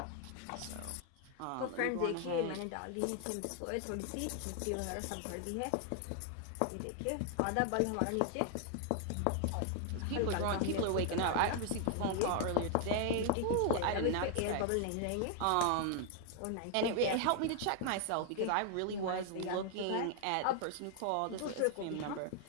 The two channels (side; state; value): both; different; correlation 0.00